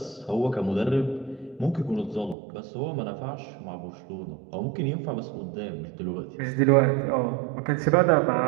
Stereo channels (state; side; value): drops out; left; at 2.4 s